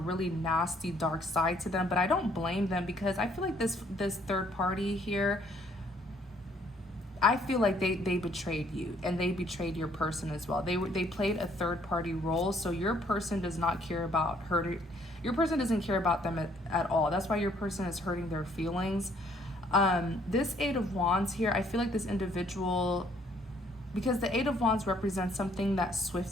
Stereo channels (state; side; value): normal; both; correlation 0.64